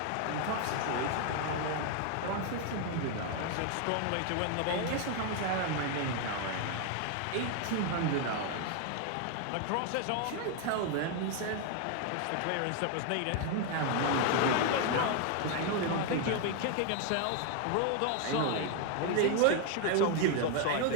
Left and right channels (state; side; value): different; both; correlation 0.01